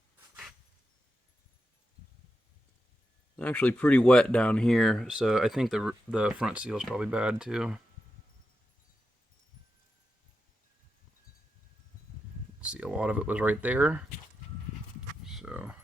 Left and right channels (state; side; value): normal; both; correlation 0.88